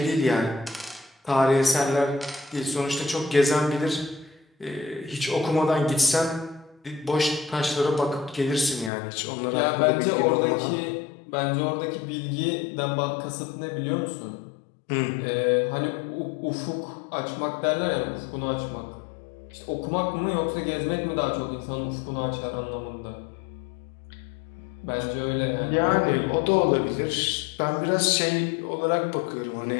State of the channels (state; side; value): drops out; right; at 8.9 s